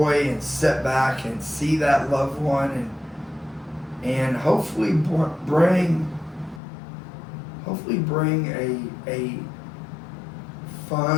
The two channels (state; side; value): drops out; right; at 6.6 s